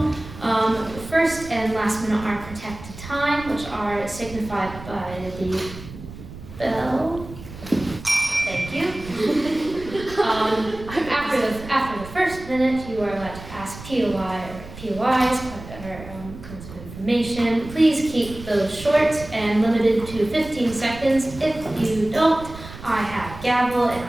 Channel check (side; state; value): right; noise; rumble, 14 dB below the sound